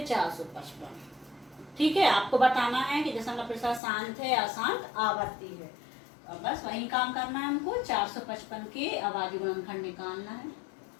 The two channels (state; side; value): drops out; right; at 3.8 s